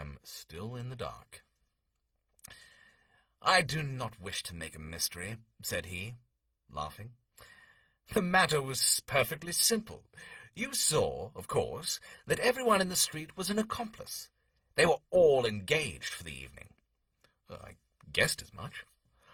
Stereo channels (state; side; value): identical; both; correlation 1.00